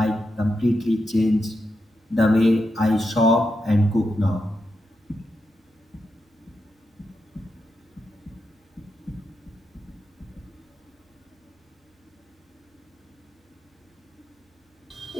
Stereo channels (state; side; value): normal; both; correlation 0.86